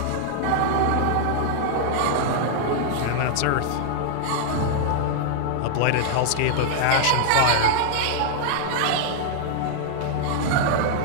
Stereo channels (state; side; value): different; both; correlation -0.01